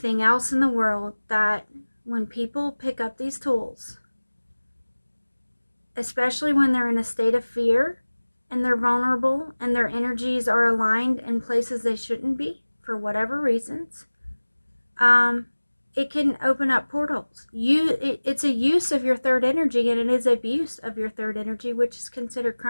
else in the world, that when people pick up these tools, especially when they're in a state of fear and they're vulnerable and their energies are aligned in places they shouldn't be for whatever reasons, it can open up portals. It's a use of your third energy, and it is abuse of your third energy, which is considered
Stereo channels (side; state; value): both; inverted; correlation -1.00